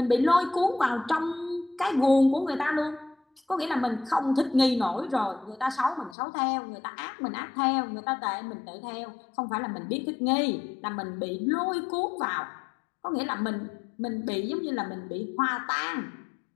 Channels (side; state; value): right; drops out; at 6.2 s